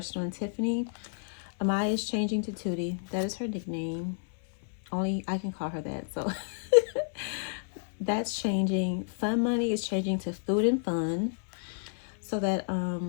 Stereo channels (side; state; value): right; silent; 57 dB below the other